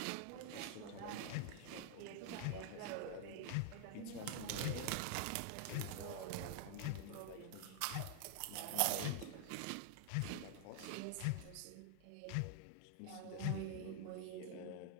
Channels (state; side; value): different; both; correlation 0.00